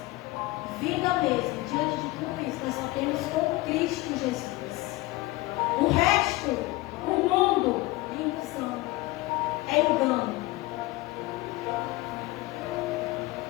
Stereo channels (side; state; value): right; quieter; 20.2 dB